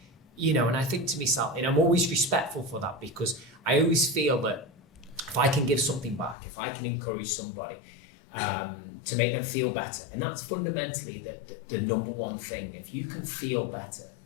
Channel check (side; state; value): right; drops out; at 6.4 s